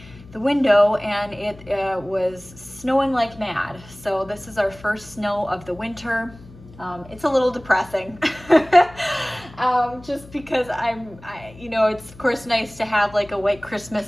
the window and it was snowing like mad. So this is our first snow of the winter. It's a little depressing just because it's of course nice to have like a white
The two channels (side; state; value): left; noise; hum, 20 dB below the sound